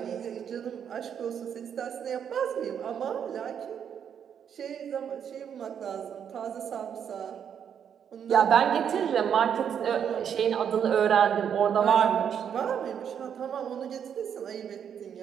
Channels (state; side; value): quieter; left; 8.2 dB